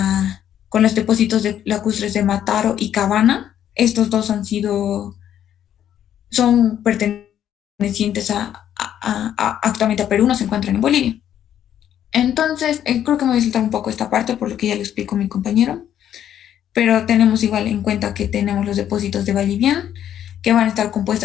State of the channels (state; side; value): quieter; right; 10.4 dB